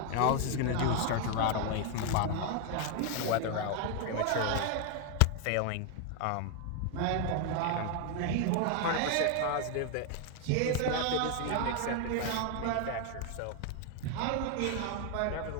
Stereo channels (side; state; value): both; different; correlation 0.01